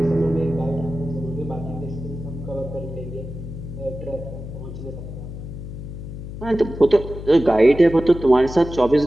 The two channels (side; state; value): left; noise; hum, 10 dB below the sound